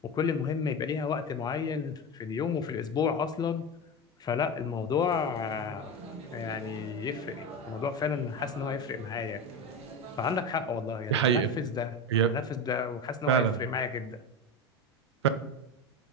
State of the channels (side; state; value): both; normal; correlation 0.21